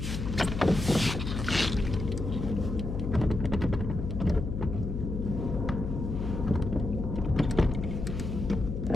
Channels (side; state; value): left; noise; hum, 4 dB below the sound